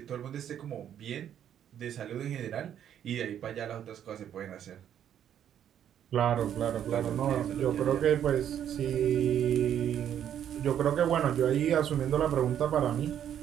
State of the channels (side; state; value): left; quieter; 9.8 dB